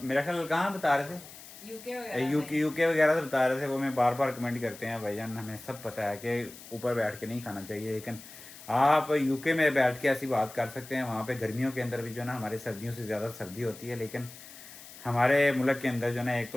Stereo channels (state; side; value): noise; left; hiss, 17 dB below the sound